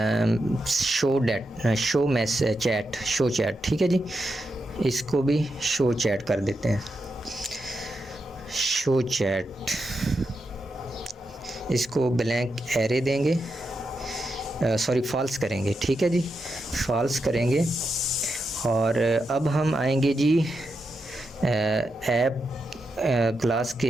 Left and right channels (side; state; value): both; normal; correlation 0.86